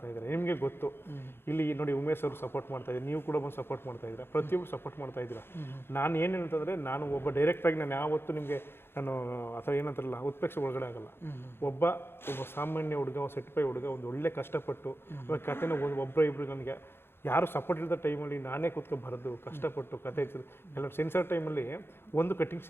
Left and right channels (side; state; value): right; late; 0.11 ms